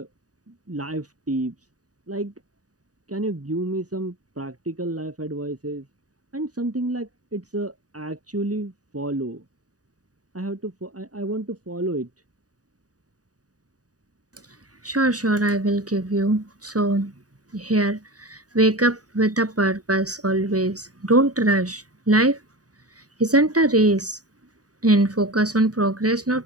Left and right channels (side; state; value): left; late; 0.67 ms